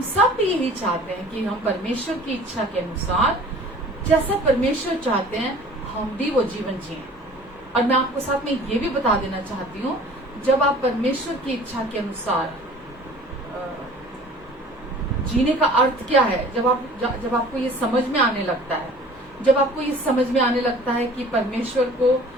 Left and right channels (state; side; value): normal; both; correlation 0.47